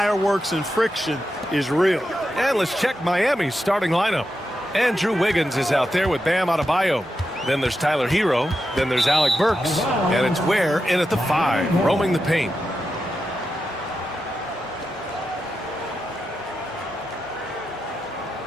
and friction is real. And let's check Miami's starting lineup. Andrew Wiggins is out there with Bam Adebayo. Then there's Tyler Hero. Then there's Alec Burks. And it's Ware in at the 5, roaming the paint.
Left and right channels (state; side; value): normal; both; correlation 0.88